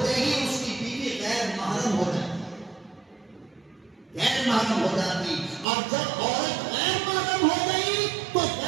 ہی اس کی بیوی غیر محرم ہو جاتی، غیر محرم ہو جاتی. اور جب عورت غیر محرم ہو گئی تو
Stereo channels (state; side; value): drops out; left; at 5.7 s